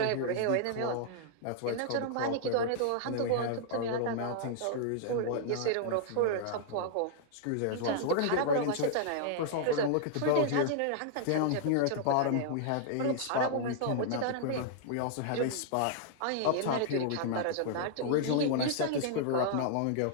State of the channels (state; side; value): different; both; correlation -0.01